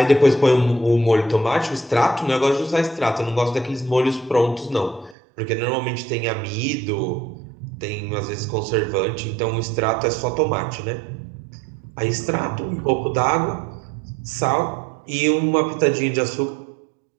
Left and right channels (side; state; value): left; drops out; at 5.2 s